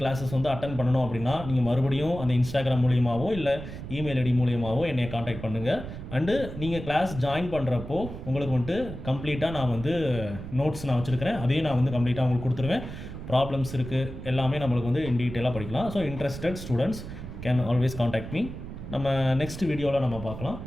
கிளாஸஸ் வந்து அட்டன் பண்ணணும் அப்படின்னா நீங்கள் மறுபடியும் அந்த இன்ஸ்டாகிராம் மூலியமாகவோ இல்லை இமெயில் ஐடி மூலியமாகவோ என்னை காண்டாக்ட் பண்ணுங்கள். அண்டு நீங்கள் கிளாஸ் ஜாயின் பண்ணுறப்போ உங்களுக்கு வந்துட்டு கம்ப்ளீட்டாக நான் வந்து நோட்ஸ் நான் வச்சுருக்கிறேன். அதையும் நான் வந்து கம்ப்ளீட்டாக உங்களுக்கு கொடுத்துருவேன். ப்ராப்ளம்ஸ் இருக்குது, எல்லாமே நம்மளுக்கு வந்து இன் டீட்டெயிலாக படிக்கலாம். So interested students can always contact me. நம்ம நெக்ஸ்ட் வீடியோவில் நம்ம பார்க்கலாம்.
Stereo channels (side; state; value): right; noise; rumble, 10 dB below the sound